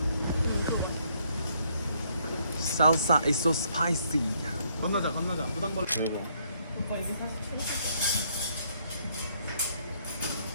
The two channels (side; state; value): both; inverted; correlation -0.69